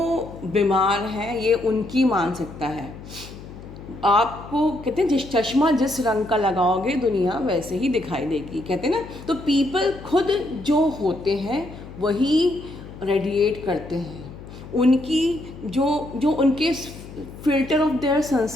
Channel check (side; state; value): left; noise; hum, 15 dB below the sound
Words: बीमार है, ये उनकी मानसिकता है। आपको कहते हैं जिस चश्मा जिस रंग का लगाओगे दुनिया वैसे ही दिखाई देगी, कहते हैं ना। तो पीपल खुद जो होते हैं वही रेडिएट करते हैं। उनकी जो जो उनके फिल्टर ऑफ देयर